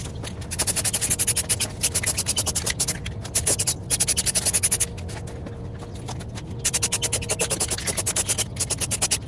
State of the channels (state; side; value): identical; both; correlation 1.00